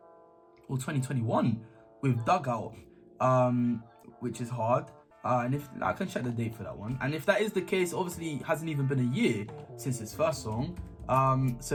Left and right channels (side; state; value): both; identical; correlation 1.00